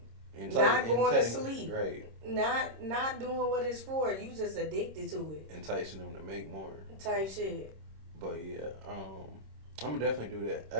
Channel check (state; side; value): late; left; 26 ms